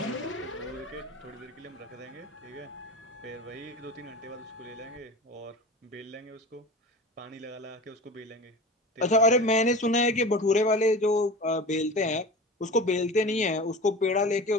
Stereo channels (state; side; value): normal; both; correlation 0.33